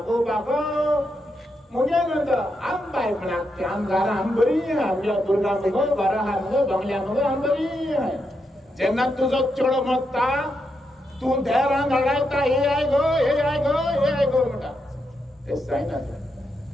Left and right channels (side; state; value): both; normal; correlation 0.83